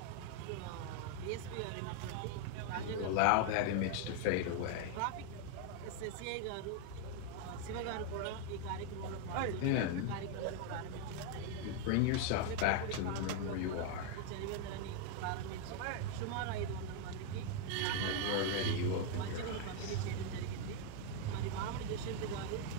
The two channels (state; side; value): different; both; correlation 0.01